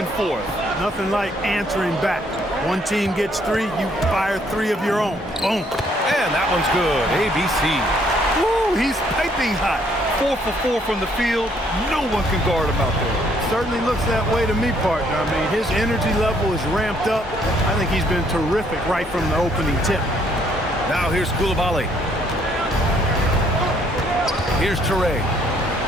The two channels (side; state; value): both; normal; correlation 0.67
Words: forth. Nothing like answering back. One team gets 3, you fire 3 of your own. Boom. And that one's good. ABC. Woo, he's piping hot. 4 for 4 from the field. No one can guard him out there. Certainly looks that way to me, partner. I mean, his energy level is ramped up. I think he's been terrific right from the opening tip. Now here's Koulibaly. Here's Traore.